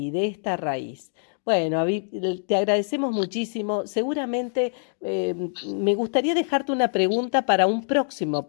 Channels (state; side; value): silent; right; digital silence